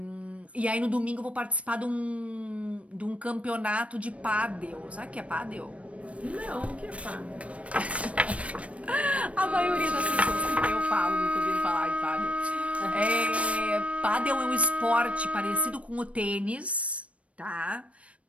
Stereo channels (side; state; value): left; late; 0.064 ms